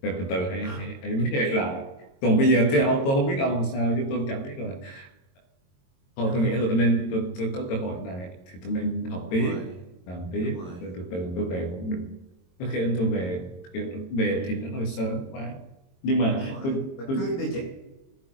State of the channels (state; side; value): late; right; 22 ms